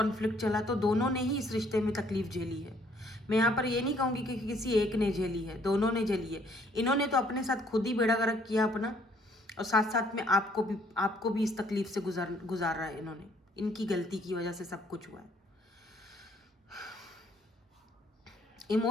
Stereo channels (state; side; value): normal; both; correlation 0.64